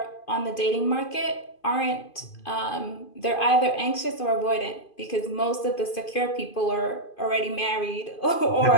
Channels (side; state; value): right; late; 2.5 ms